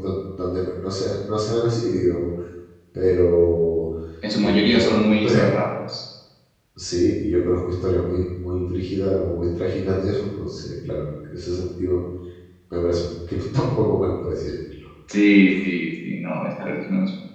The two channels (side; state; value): both; identical; correlation 1.00